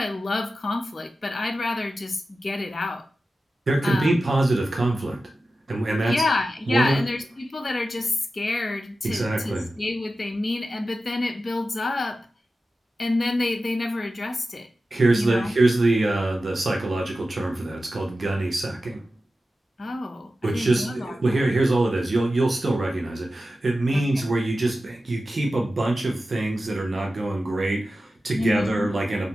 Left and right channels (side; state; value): both; normal; correlation 0.93